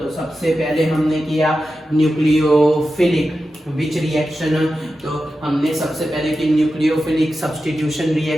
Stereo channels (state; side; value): normal; both; correlation 0.92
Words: तो सबसे पहले हमने किया न्यूक्लियोफिलिक विच रिएक्शन। तो हमने सबसे पहले की न्यूक्लियोफिलिक सब्स्टिट्यूशन